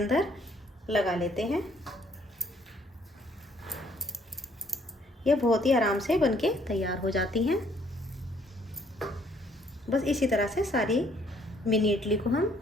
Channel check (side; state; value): both; normal; correlation 0.64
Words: लगा लेते हैं। ये बहुत ही आराम से बनके तैयार हो जाती हैं। बस इसी तरह से सारी मिनी इडली को हम